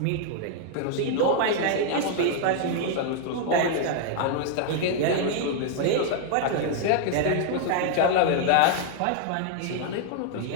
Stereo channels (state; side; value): different; both; correlation -0.01